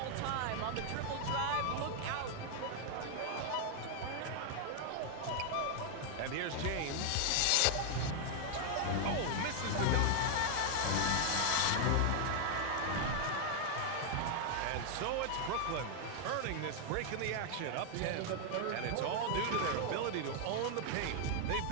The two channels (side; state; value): both; different; correlation 0.00